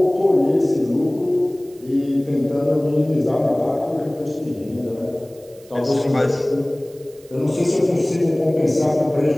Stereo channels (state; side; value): noise; right; hiss, 27 dB below the sound